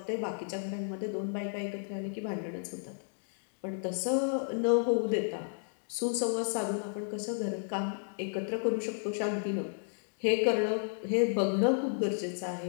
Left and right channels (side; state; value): right; silent; digital silence